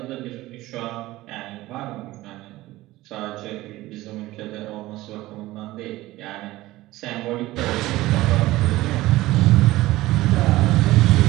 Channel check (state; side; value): quieter; left; 17.6 dB